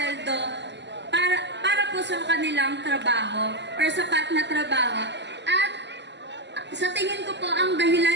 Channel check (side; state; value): left; late; 0.51 ms